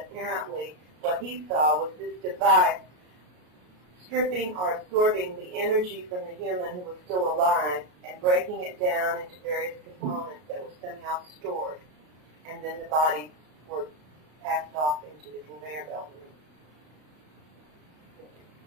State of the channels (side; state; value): left; late; 33 ms